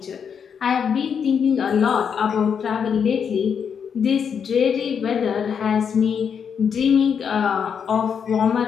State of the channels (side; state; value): right; quieter; 7.1 dB